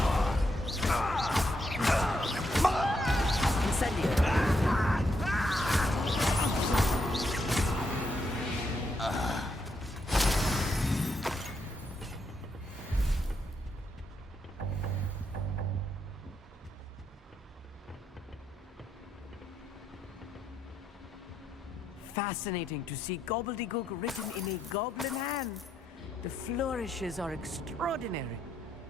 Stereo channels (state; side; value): normal; both; correlation 0.79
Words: fascinating to see gobbledygook written in a goblin hand. The flourishes are extraordinary.